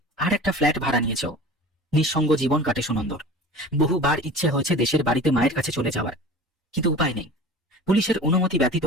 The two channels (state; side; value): normal; both; correlation 0.39